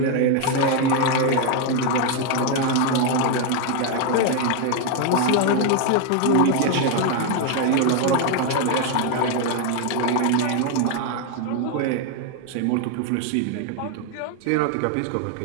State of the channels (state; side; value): different; both; correlation 0.01